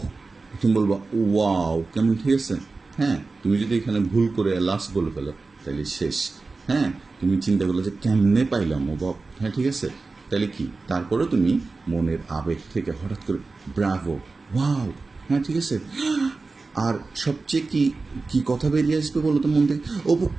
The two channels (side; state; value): left; quieter; 3.8 dB